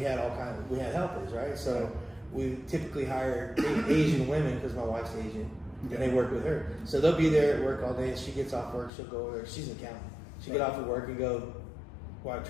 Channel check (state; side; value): drops out; right; at 8.9 s